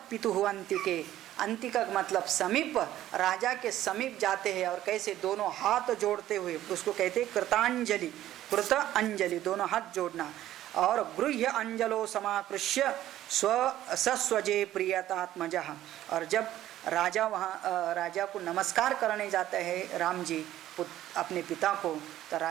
पितुः अंतिके, अंतिका मतलब समीप, राजा के समीप जाते हैं और कैसे दोनों हाथ जोड़ते हुए, उसको कहते हैं कृतांजलि, कृत अंजलि, दोनों हाथ जोड़ना। और गृह्य अंजलो समाकृष्य सस्वजे प्रियतात्मजः, और जब राजा वहाँ राजा को नमस्कार करने जाते हैं राम जी अपने पिता को, तो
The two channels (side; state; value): left; quieter; 13.3 dB